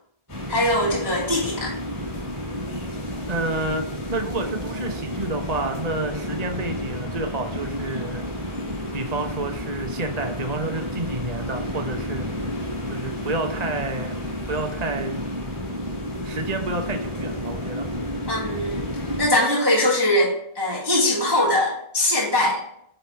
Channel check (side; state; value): left; late; 1.1 ms